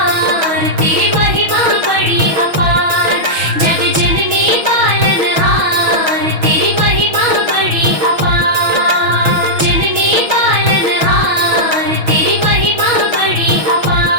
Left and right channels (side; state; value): left; late; 6.2 ms